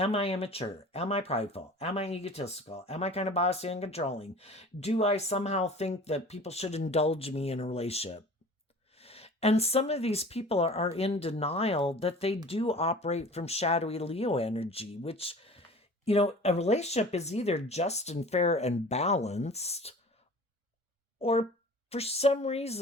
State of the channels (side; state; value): both; normal; correlation 0.42